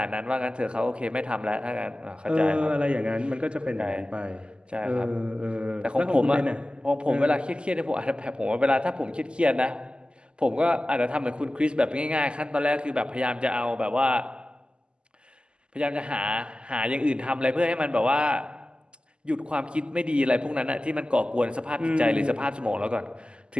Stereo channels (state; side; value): late; left; 0.050 ms